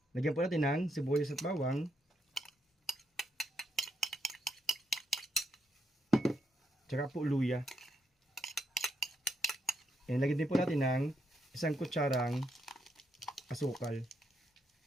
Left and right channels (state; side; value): normal; both; correlation 0.77